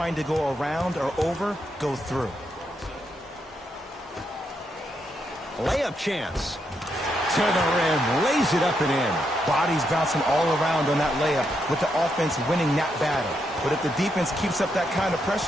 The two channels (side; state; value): both; normal; correlation 0.80